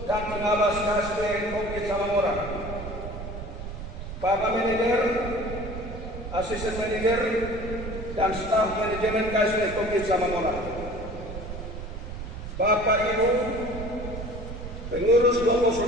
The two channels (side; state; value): right; noise; rumble, 9 dB below the sound